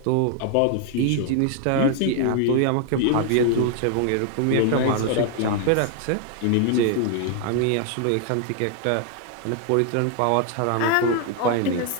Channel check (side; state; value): both; different; correlation 0.00